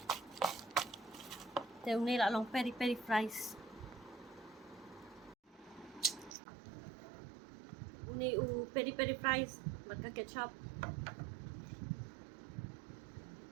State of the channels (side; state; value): left; drops out; at 6.4 s